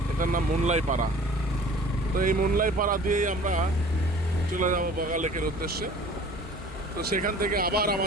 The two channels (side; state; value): both; normal; correlation 0.47